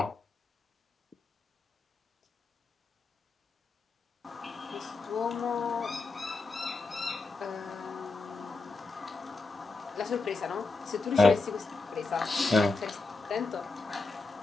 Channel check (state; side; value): quieter; right; 3.7 dB